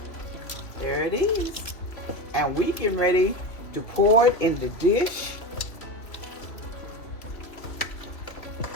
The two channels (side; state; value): right; late; 2.8 ms